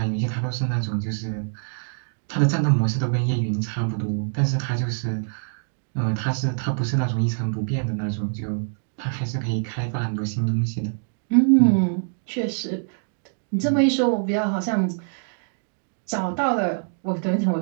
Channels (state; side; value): silent; left; digital silence